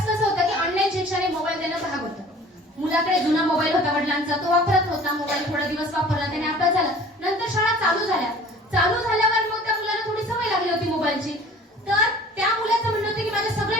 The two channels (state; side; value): normal; both; correlation 0.47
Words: कसं होतं की ऑनलाईन शिक्षण मोबाईल देणं भाग होतं. मुलाकडे जुना मोबाईल होता वडिलांचा, तो वापरत होता मोबाईल, थोडा दिवस वापरला, त्याने अभ्यास झाला. नंतर शाळा चालू झाल्यावर मग त्या मुलाला थोडी सवय लागली होती मोबाईलची. तर त्या मुलाचं म्हणणं होतं की माझ्या